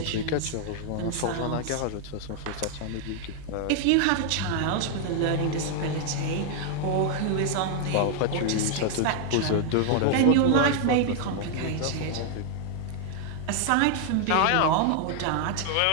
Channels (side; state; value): both; different; correlation 0.00